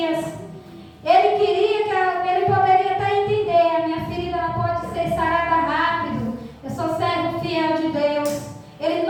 Ele queria que ele poderia até entender: a minha ferida ela pode ser sarada rápido,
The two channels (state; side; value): identical; both; correlation 1.00